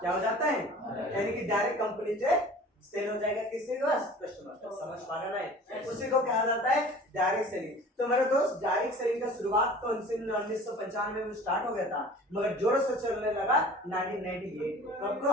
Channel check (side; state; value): both; normal; correlation 0.44